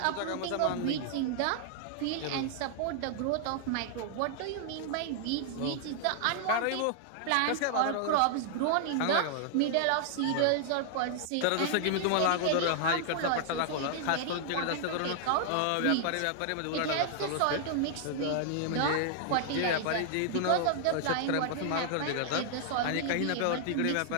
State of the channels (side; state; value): both; different; correlation -0.01